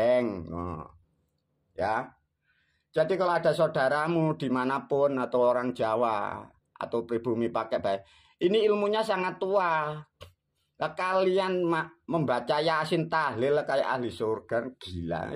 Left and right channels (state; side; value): identical; both; correlation 1.00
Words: Ya, jadi kalau ada saudaramu dimanapun atau orang Jawa atau pribumi pakai baik, ini ilmunya sangat tua. Nah, kalian membaca Yasin tahlil kayak ahli surga, gila.